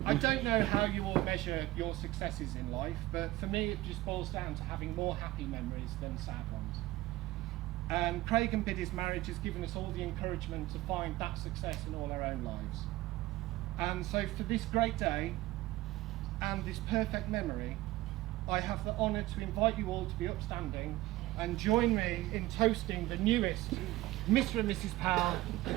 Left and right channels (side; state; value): left; quieter; 17.7 dB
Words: I don't know how you all measure your successes in life, but for me it just boils down to having more happy memories than sad ones. And Craig and Biddy's marriage has given us all the encouragement to find that success in all our own lives. And so for this great day and this perfect memory, I have the honour to invite you all to be upstanding and join me in toasting the newest Mr. and Mrs. Powell,